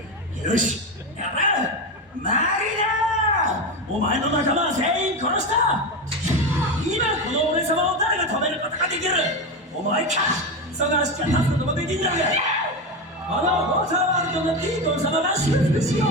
よし、やれ。マリナ、お前の仲間は全員殺した。今この俺様を誰が止めることができる。お前か。その足が立つこともできんだが、このウォーターワールドのディーコン様が祝福しよう。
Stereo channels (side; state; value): both; normal; correlation 0.17